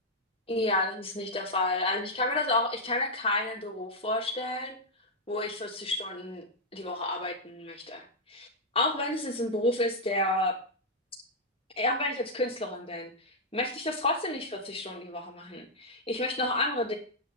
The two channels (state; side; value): normal; both; correlation -0.04